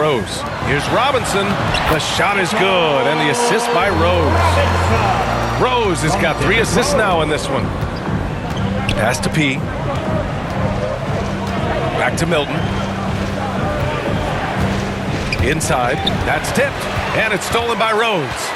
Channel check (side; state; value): both; identical; correlation 1.00